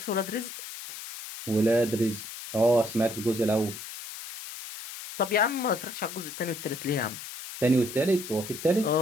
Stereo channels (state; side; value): noise; left; hiss, 11 dB below the sound